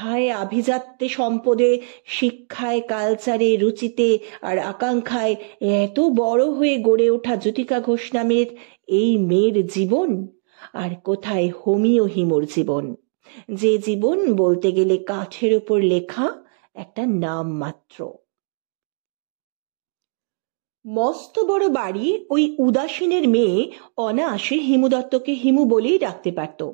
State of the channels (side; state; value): left; silent; 63 dB below the other